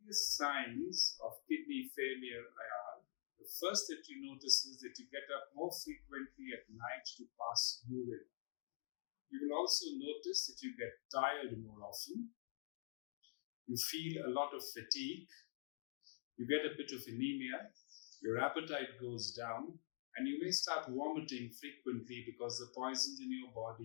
earliest signs of kidney failure are, the first that you notice is that you get up more frequently at night to pass urine. You will also notice that you get tired more often. You feel a lot of fatigue. You get a bit of anemia. Your appetite goes down. And you may start vomiting frequently because the poisons in your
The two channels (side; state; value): right; silent; digital silence